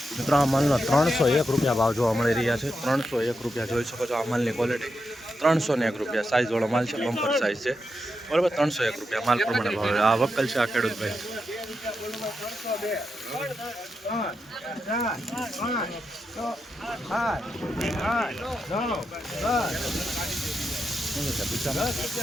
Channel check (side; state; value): both; normal; correlation 0.86